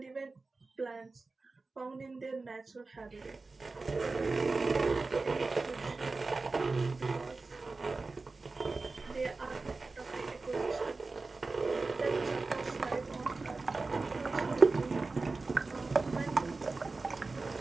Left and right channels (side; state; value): left; quieter; 3.7 dB